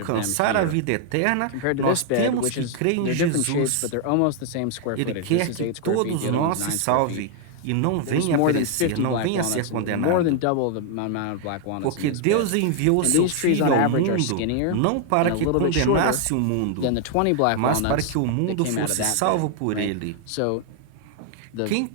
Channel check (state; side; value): different; both; correlation 0.00